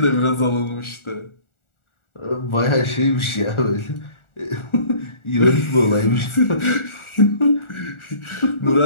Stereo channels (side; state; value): right; late; 1.4 ms